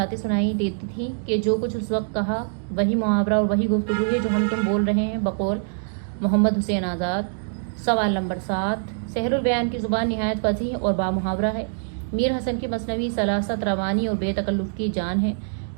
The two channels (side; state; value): left; silent; digital silence